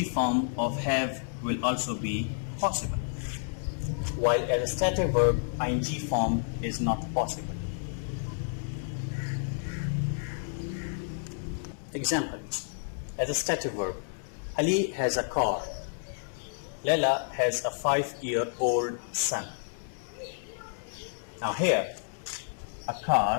form of have will also be possible, while as a stative verb, ing form is not possible. Examples. As a stative verb, Ali has a car. Leila has a 5-year-old son. Now here, a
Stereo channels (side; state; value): right; silent; 58 dB below the other